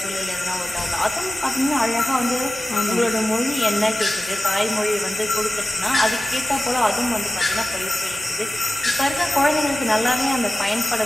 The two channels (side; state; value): both; normal; correlation 0.95